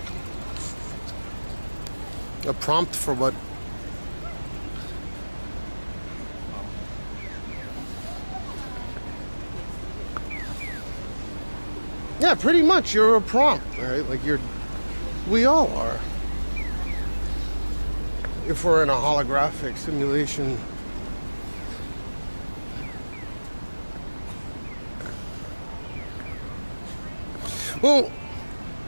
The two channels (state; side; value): inverted; both; correlation -1.00